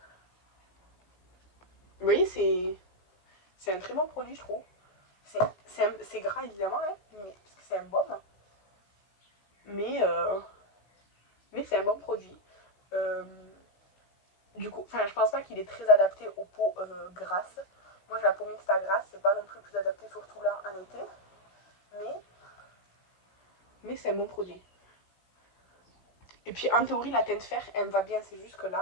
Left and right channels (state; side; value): late; right; 17 ms